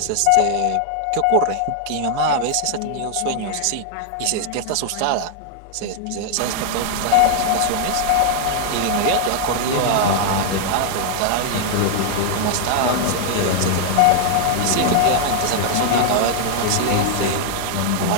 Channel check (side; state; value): both; different; correlation 0.00